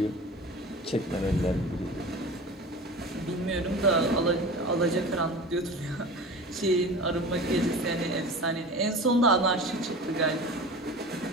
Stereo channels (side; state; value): both; normal; correlation 0.35